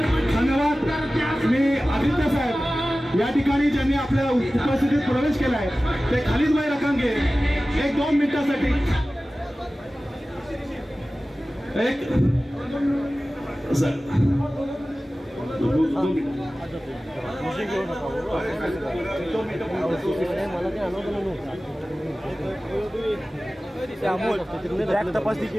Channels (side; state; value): both; normal; correlation 0.96